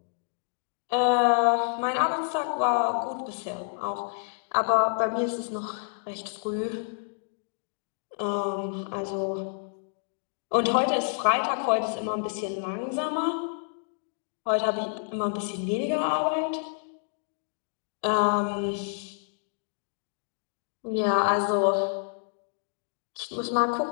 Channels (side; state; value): right; silent; digital silence